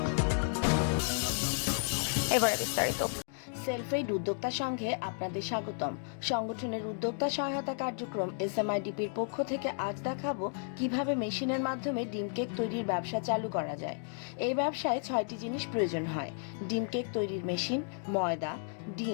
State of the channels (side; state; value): right; silent; 56 dB below the other